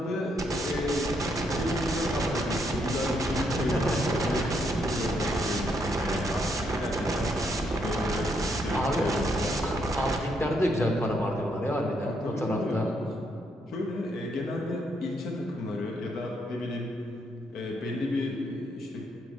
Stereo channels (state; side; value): normal; both; correlation 0.75